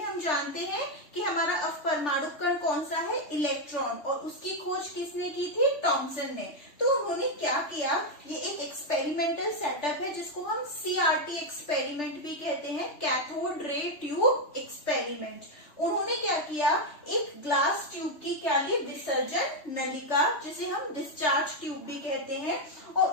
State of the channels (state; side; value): late; right; 3.4 ms